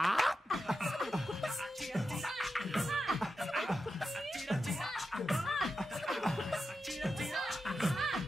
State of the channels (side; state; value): both; normal; correlation 0.90